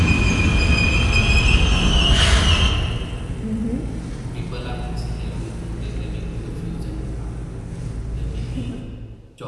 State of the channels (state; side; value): identical; both; correlation 1.00